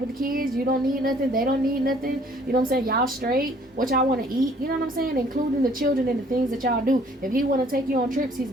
the kids? You don't need nothing, they don't need nothing, you know what I'm saying? Y'all straight? What y'all want to eat? You know what I'm saying? Including the children and the things that y'all do. If he want to take you on trips, he's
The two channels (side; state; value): both; normal; correlation 0.59